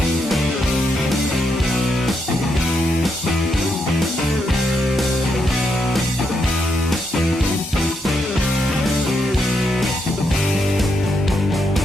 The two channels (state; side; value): normal; both; correlation 0.80